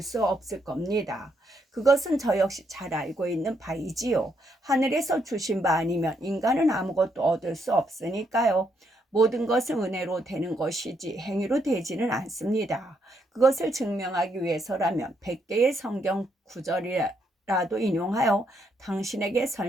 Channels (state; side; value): normal; both; correlation 0.76